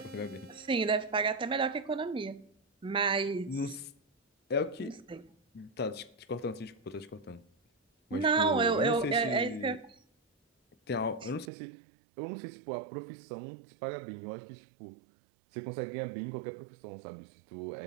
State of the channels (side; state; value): left; drops out; at 11.5 s